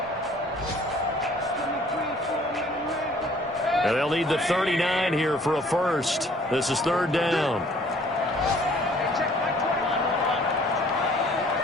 And they'll need the 39 here for a first. This is 3rd down.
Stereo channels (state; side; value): normal; both; correlation 0.57